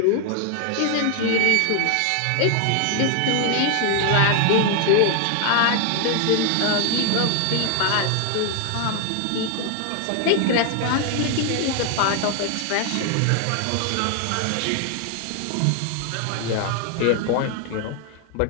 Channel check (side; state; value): both; different; correlation 0.00